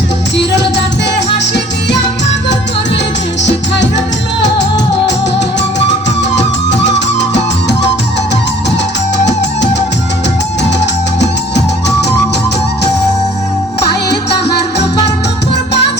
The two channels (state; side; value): normal; both; correlation 0.54